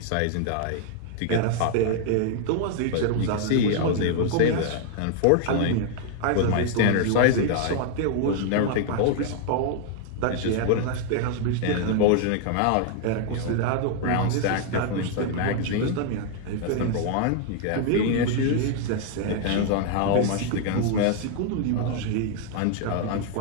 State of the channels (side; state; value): both; different; correlation 0.00